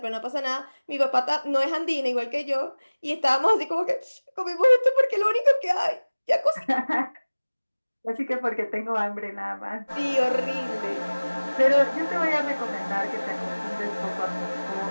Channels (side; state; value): both; inverted; correlation -1.00